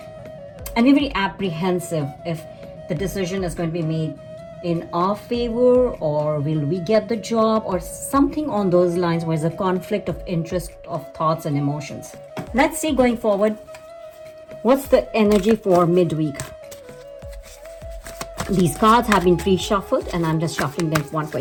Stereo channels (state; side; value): identical; both; correlation 1.00